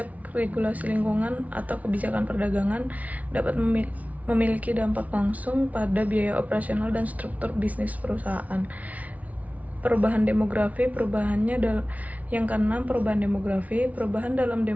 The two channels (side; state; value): left; late; 0.070 ms